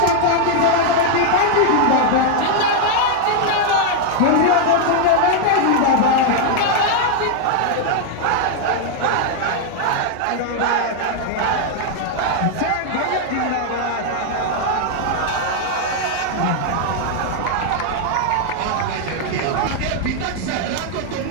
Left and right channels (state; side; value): different; both; correlation 0.00